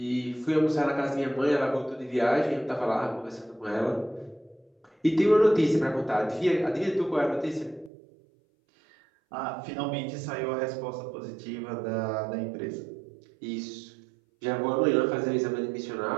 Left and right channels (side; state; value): left; drops out; at 7.9 s